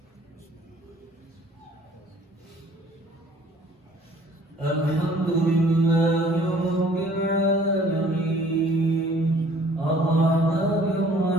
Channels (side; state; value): both; normal; correlation 0.55